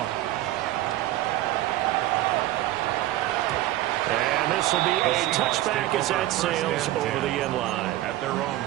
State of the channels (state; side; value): quieter; left; 15.4 dB